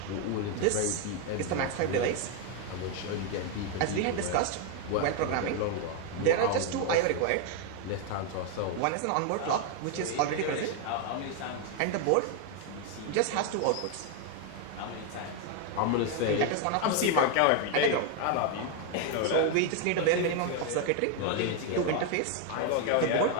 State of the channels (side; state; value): both; different; correlation 0.01